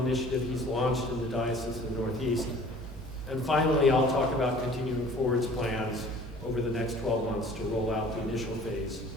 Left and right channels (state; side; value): normal; both; correlation 0.49